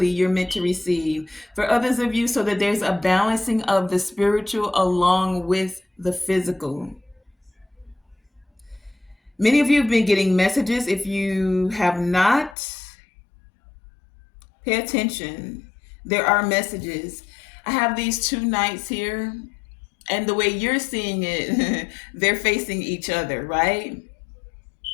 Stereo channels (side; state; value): right; drops out; at 12.6 s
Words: you're meant to receive. For others of you, so that there's a balancing of the spiritual along with the physical. Many of you have been getting messages. If you have not, pay attention. There are messages. I have these two knights here, and the way you're seeing it, they're facing each other, right?